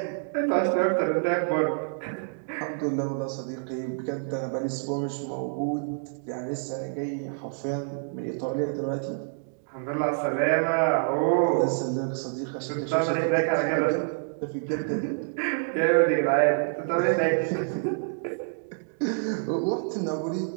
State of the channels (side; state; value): left; silent; digital silence